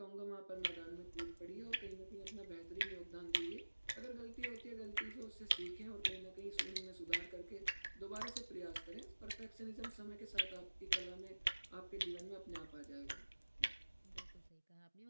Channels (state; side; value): inverted; both; correlation -1.00